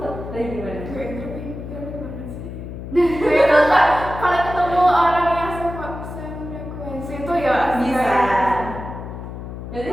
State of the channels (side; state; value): left; noise; hum, 9 dB below the sound